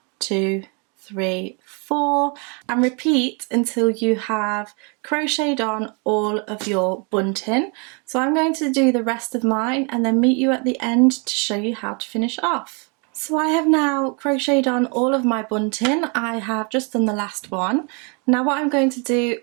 2, 3, 4, and repeat until you have crocheted on all of your bunting. So I'm going to do the rest of mine and then meet you at the end to show you how to finish off. So I have now crocheted on all of my bunting. I have just done the last one. Now what I'm going to do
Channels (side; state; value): left; quieter; 34.7 dB